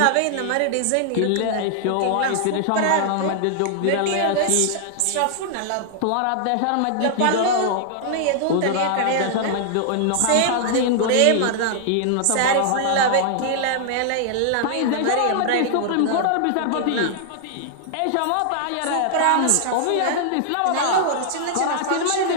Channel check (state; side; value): different; both; correlation -0.01